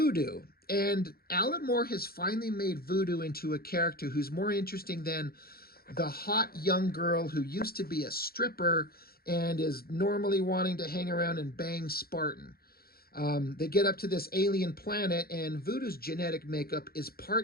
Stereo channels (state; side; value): late; right; 0.44 ms